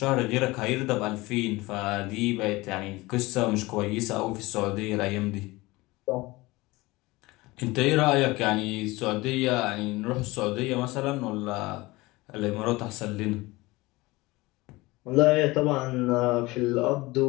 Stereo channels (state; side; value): quieter; right; 21.3 dB